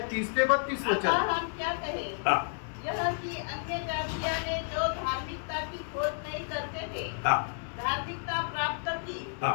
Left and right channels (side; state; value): right; silent; digital silence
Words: 30 ते 32 अतः वचन. हम क्या कहें? हाँ यह कि अन्य जातियों ने जो धार्मिकता की खोज नहीं करते थे, हाँ धार्मिकता प्राप्त की, हाँ